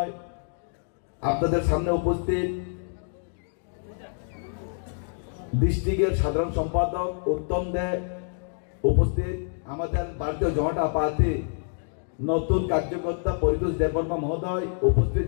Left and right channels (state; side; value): silent; right; digital silence